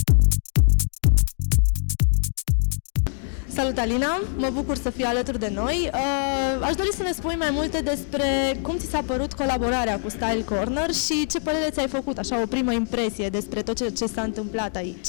Salut, Alina! Mă bucur să fii alături de noi. Aș dori să ne spui mai multe despre cum ți s-a părut colaborarea cu Style Corner și ce părere ți-ai făcut, așa, o primă impresie despre tot ce s-a întâmplat aici.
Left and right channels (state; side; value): silent; right; 63 dB below the other